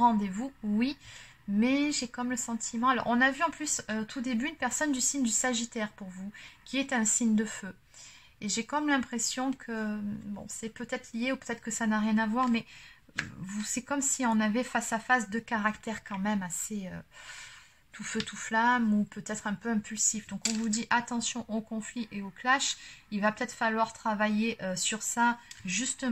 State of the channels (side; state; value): both; identical; correlation 1.00